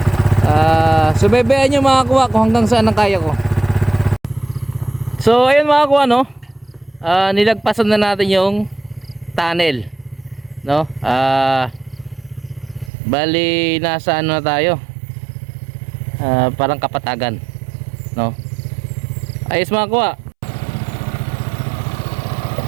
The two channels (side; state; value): left; drops out; at 12.9 s